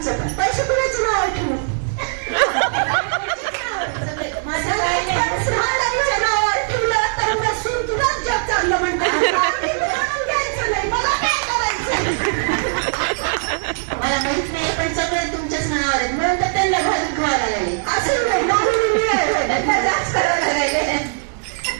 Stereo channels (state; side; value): silent; left; digital silence